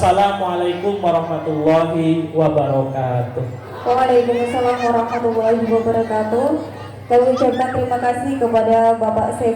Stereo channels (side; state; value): both; identical; correlation 1.00